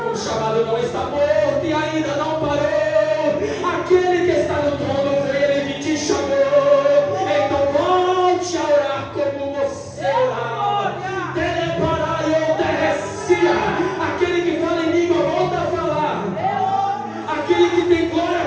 O chamado não está morto e ainda não parou. Aquele que está no trono veio, ele te chamou. Então volte a orar como você orava. Teleparaiô terrecia. Aquele que fala em língua volta a falar. Aquele que tem glória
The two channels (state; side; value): identical; both; correlation 1.00